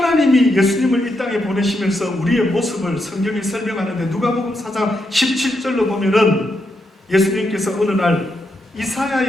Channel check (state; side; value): normal; both; correlation 0.82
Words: 예수님을 이 땅에 보내시면서 우리의 모습을 성경이 설명하는데 누가복음 4장 17절로 보면은 예수님께서 어느 날